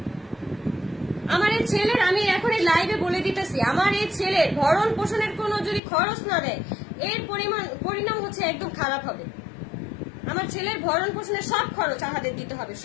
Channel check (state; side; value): drops out; right; at 5.8 s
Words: আমার এই ছেলের, আমি এখন এই লাইভে বলে দিতেছি, আমার এই ছেলের ভরণ পোষণের কোনো যদি খরচ না দেয়, এর পরিণাম হচ্ছে একদম খারাপ হবে। আমার ছেলের ভরণ পোষণের সব খরচ আমাদের দিতে হবে,